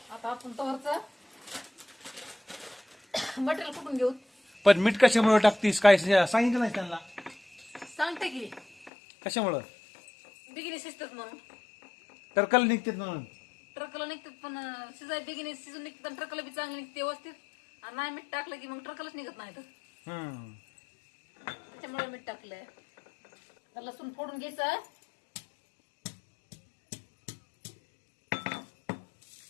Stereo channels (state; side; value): drops out; right; at 8.9 s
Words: आता आपण तवरचं मटेरियल कुठून घेऊ. पण मीठ कशामुळे टाकतीस काय सांगितलं नाही त्यांना? सांगते की कशामुळं? बिगिनी शिजतात म्हणून. टरकल निघतात म्हणून. पण शिजाय बेगिने शिजून निघते तर ट्रकला बी चांगली निघते व्यवस्थित. आणि नाही मीठ टाकलं की मग ट्रकलच निघत नाही तर. त्याच्यामुळे मीठ टाकलंय. तर लसूण फोडून घ्यायचं.